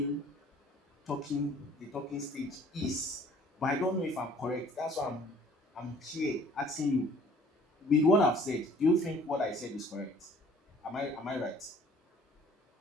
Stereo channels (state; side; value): normal; both; correlation 0.55